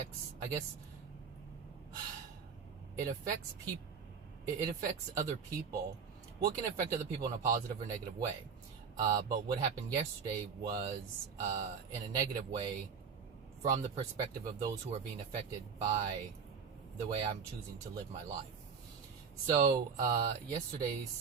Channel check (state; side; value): quieter; left; 6.1 dB